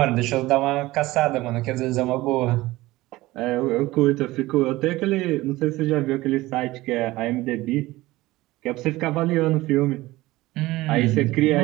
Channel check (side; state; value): left; quieter; 18.6 dB